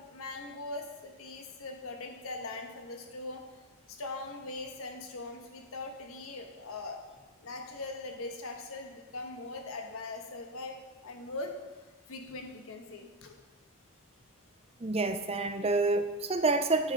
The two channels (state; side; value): normal; both; correlation 0.12